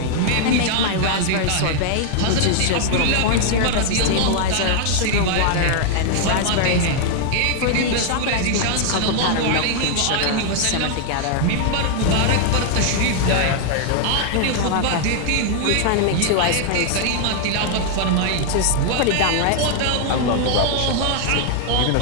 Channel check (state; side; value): different; both; correlation 0.00